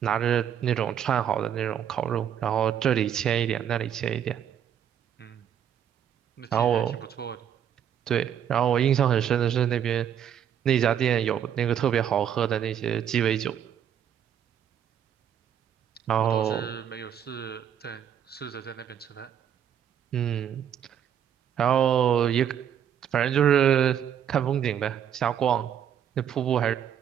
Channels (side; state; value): left; quieter; 9.3 dB